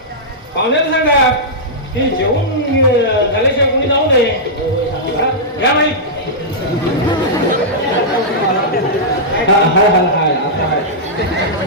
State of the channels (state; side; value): normal; both; correlation -0.11